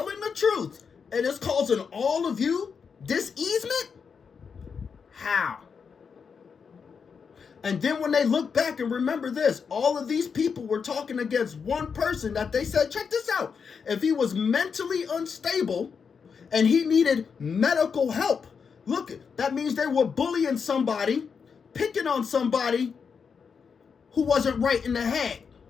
the truth, and it's causing all of you this easement? How? And then when they look back and remember this, all of these people were talking against one person that they said, check this out, if he was mentally unstable and he needed medical help, look, that means they were bullying somebody, picking on somebody who wasn't right in the head,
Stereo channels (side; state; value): right; quieter; 6.0 dB